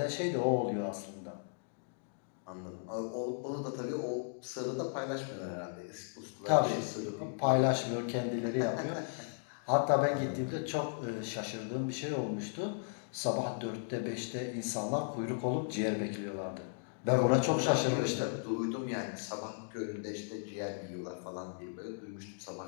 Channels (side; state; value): right; silent; digital silence